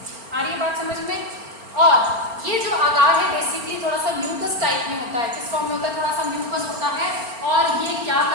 आ रही है बात समझ में। और ये जो अगार है बेसिकली थोड़ा सा म्यूकस टाइप में होता है। किस फॉर्म में होता है, थोड़ा सा म्यूकस होता है। और ये क्या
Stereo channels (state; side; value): late; left; 4.4 ms